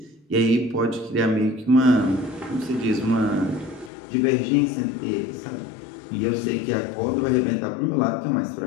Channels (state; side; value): drops out; right; at 3.9 s